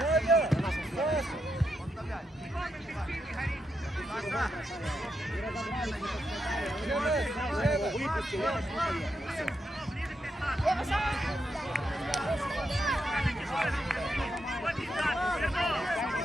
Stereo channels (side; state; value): both; normal; correlation 0.83